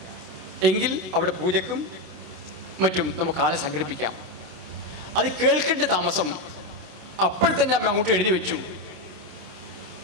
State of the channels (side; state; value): left; late; 27 ms